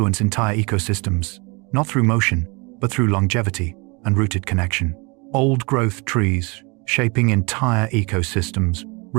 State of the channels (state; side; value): quieter; left; 29.4 dB